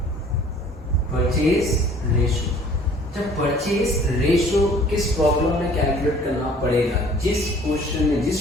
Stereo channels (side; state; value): both; normal; correlation 0.53